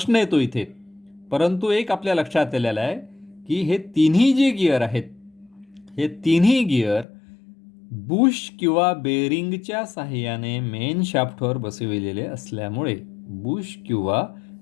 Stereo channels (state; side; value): drops out; right; at 7.1 s